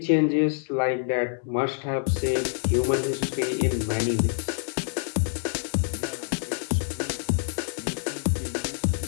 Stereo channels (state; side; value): silent; right; digital silence